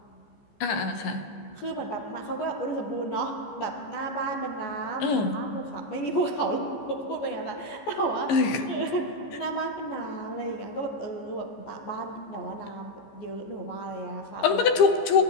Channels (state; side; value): late; right; 14 ms